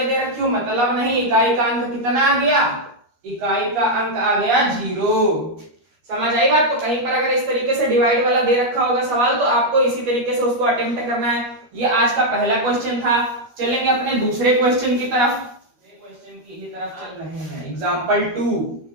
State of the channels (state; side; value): late; left; 13 ms